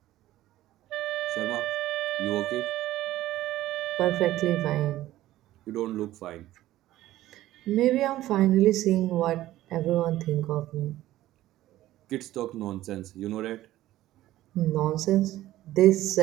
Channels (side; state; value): left; quieter; 14.9 dB